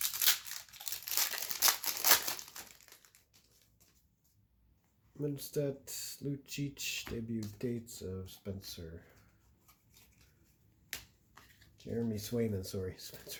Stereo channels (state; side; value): identical; both; correlation 1.00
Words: Minstedt, Lucic, debut dates of Spencer. Jeremy Swayman, sorry,